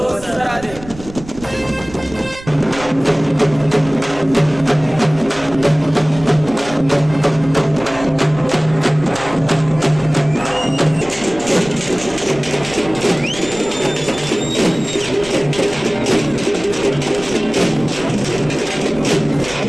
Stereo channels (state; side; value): noise; right; rumble, 17 dB below the sound